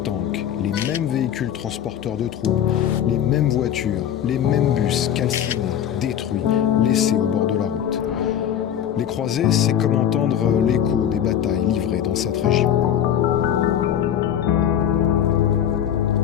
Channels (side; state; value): right; quieter; 9.8 dB